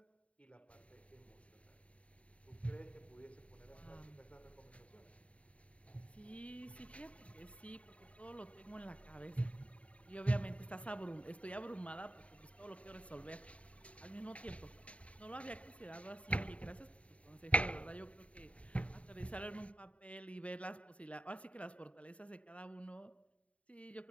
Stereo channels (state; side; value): late; right; 0.064 ms